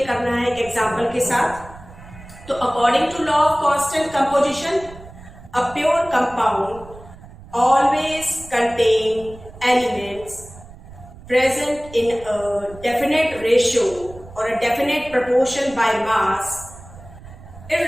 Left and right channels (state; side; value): noise; right; rumble, 18 dB below the sound